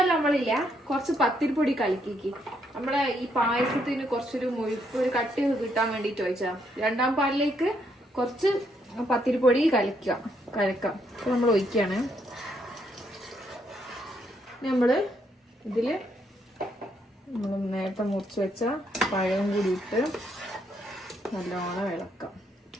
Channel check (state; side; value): normal; both; correlation 0.74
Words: നമ്മളില്ല, കുറച്ച് പത്തിരിപ്പൊടി കലക്കിക്ക്. നമ്മളെ ഈ പായസത്തിന് കുറച്ചൊരു മുഴുപ്പ്, ഒരു കട്ടി കിട്ടാൻ വേണ്ടിട്ട് ഒഴിച്ചാ. 2-ാം പാലിലേക്ക് കുറച്ച് പത്തിരിപ്പൊടി കലക്കാം. അപ്പൊ നമ്മൾ ഒഴിക്കാണ്. നമ്മള് ഇതില് നമ്മൾ നേരത്തെ മുറിച്ച് വെച്ച പഴം കൂടി ഇട്ട് നല്ലോണം ഇളക്കാം.